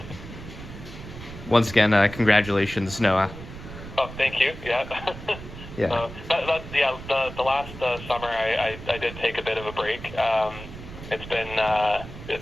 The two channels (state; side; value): noise; right; rumble, 13 dB below the sound